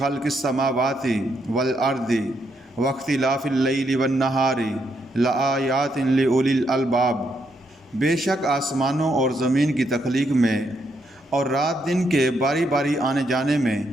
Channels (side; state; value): both; normal; correlation 0.77